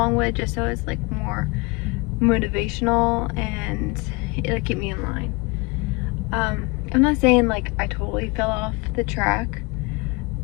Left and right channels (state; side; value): quieter; right; 26.5 dB